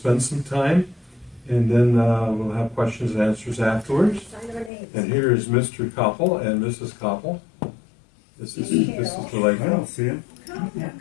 some time, and then we'll have questions and answers afterwards. And here is Mr. Koppel and Mrs. Koppel. This is the lady. I don't see him.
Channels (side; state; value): right; drops out; at 4.7 s